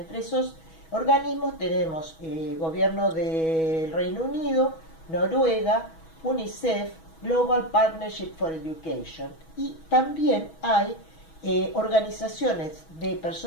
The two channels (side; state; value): right; late; 6.2 ms